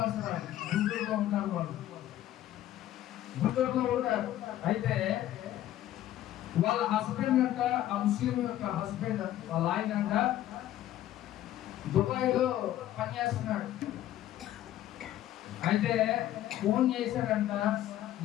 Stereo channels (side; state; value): right; quieter; 13.0 dB